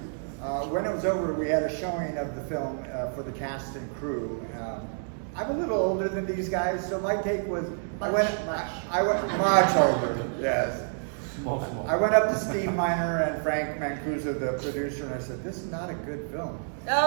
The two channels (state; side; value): silent; left; digital silence